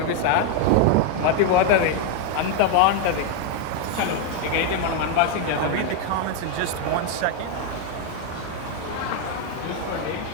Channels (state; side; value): different; both; correlation 0.01